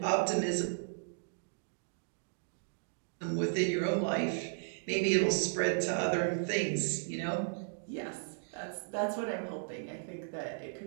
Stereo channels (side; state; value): left; silent; digital silence